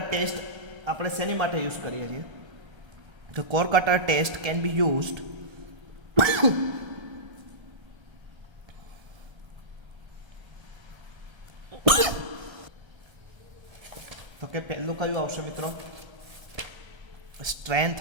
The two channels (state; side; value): late; left; 1.3 ms